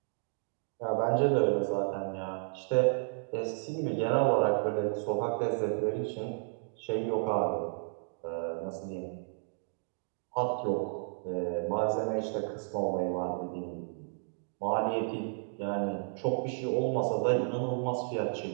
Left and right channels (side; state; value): left; silent; digital silence